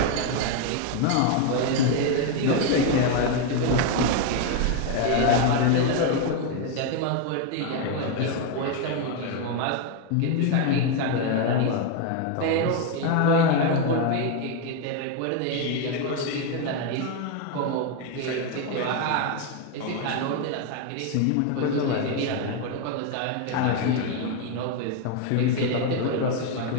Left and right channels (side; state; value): both; different; correlation 0.01